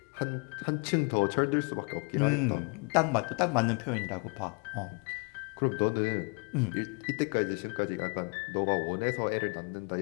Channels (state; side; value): quieter; right; 35.3 dB